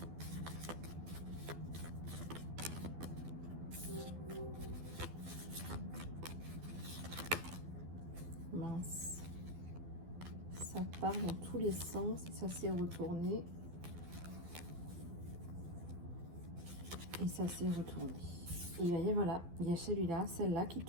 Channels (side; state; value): left; late; 12 ms